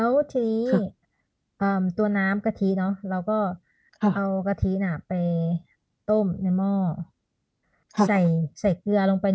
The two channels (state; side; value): identical; both; correlation 1.00